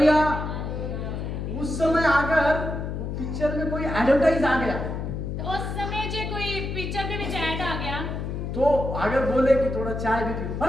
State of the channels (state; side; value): noise; left; hum, 4 dB below the sound